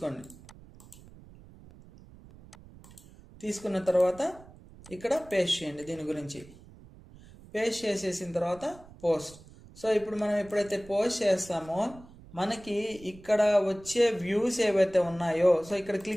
తీసుకున్న తర్వాత ఇక్కడ పేస్ట్ చేయండి. దీని గురించి పేస్ట్ చేసేసిన తర్వాత పోస్ట్. సో ఇప్పుడు మనం ఎప్పుడైతే పోస్ట్ చేస్తామో మనకి ఇక్కడ వచ్చే వ్యూస్ ఏవైతే ఉన్నాయో, సో ఇక్కడ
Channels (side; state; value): right; noise; rumble, 21 dB below the sound